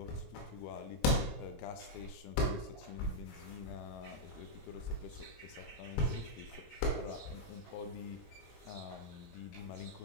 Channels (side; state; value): right; late; 19 ms